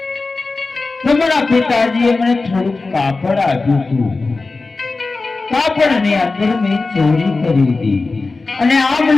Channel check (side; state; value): right; quieter; 3.7 dB